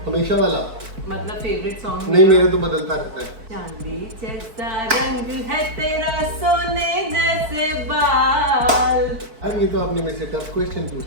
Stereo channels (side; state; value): left; late; 4.5 ms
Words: हमेशा वाला। मतलब फेवरेट सॉन्ग नहीं, मेरे तो बदलता रहता है। चांदी जैसा रंग है तेरा, सोने जैसे बाल। अरे ये तो आपने मेरे से टफ क्वेश्चन पूछ